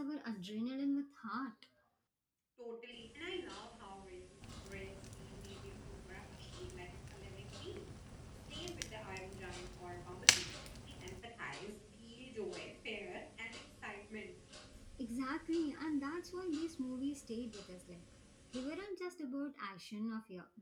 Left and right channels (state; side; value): identical; both; correlation 1.00